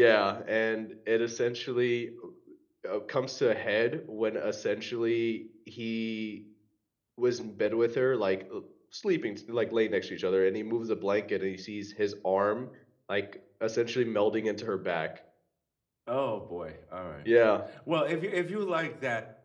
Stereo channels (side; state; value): both; identical; correlation 1.00